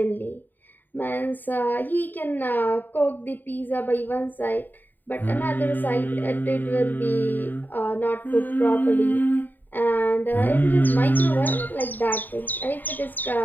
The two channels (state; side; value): late; right; 0.089 ms